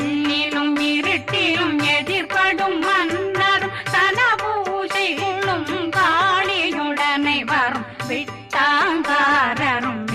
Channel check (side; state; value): both; identical; correlation 1.00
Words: இருட்டிலும் எதிர்படும் மன்னரும் தனபூசைகளும் காளியுடனை வரும் விட்டாங்காரரும்